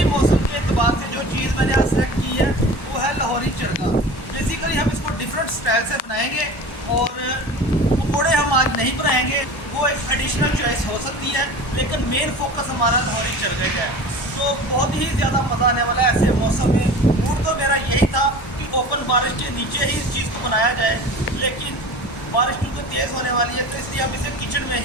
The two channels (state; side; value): late; right; 1.1 ms